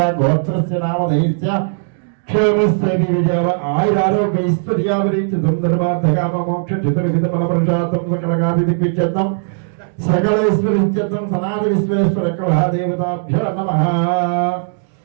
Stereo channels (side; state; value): left; silent; digital silence